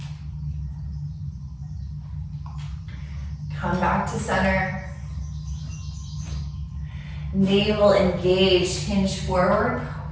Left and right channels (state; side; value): identical; both; correlation 1.00